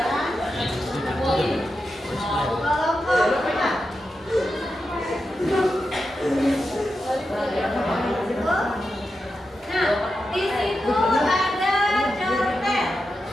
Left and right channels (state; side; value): normal; both; correlation 0.89